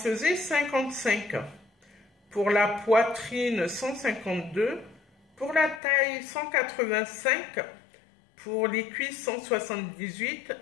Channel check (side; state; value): right; drops out; at 5.8 s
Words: 55. Pour la poitrine, 152. Pour la taille, 185. Pour les cuisses, 178.